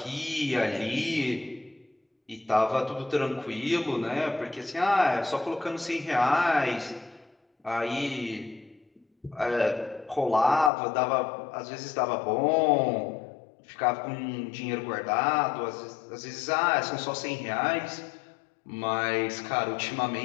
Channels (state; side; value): drops out; right; at 10.7 s